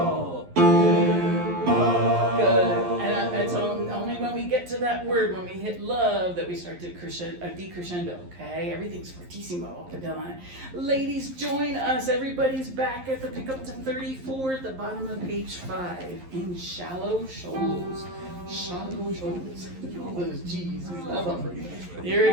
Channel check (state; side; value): late; left; 11 ms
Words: in love. Good. And it's only when we get to that word, when we hit love, that we start to decrescendo, okay? Everything's fortissimo up and down. Ladies, join us. Everybody's back at the pickup to 34 at the bottom of page 5 in shallow shoals. Shallow shoals. All those G's, we love them. Here